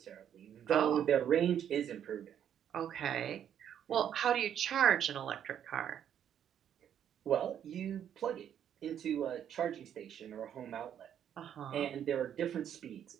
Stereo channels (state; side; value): quieter; left; 9.5 dB